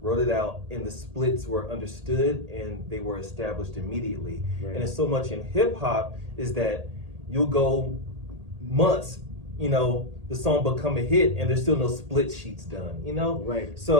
it out, and the splits were understood and they were established immediately. Right. And it's so much in hip hop is that you'll go months, you know, the song become a hit and there's still no split sheets done, you know? Right.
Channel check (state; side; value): late; left; 1.8 ms